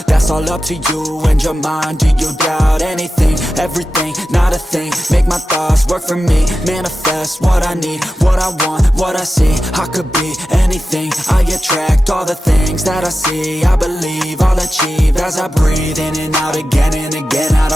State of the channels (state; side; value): normal; both; correlation 0.93